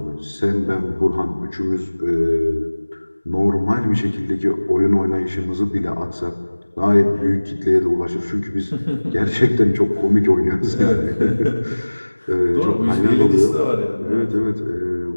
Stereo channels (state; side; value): inverted; both; correlation -1.00